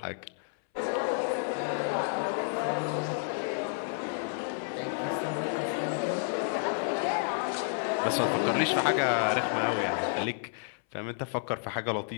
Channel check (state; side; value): silent; right; 57 dB below the other